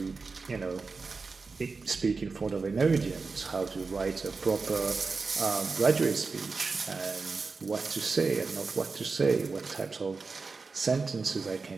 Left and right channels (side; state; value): left; quieter; 4.3 dB